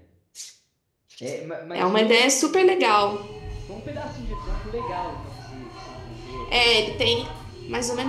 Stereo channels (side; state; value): both; identical; correlation 1.00